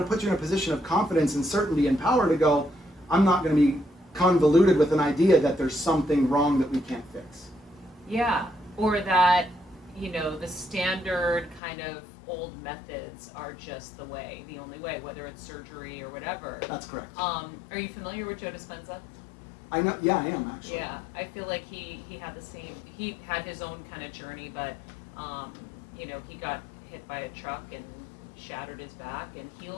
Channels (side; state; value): right; drops out; at 11.6 s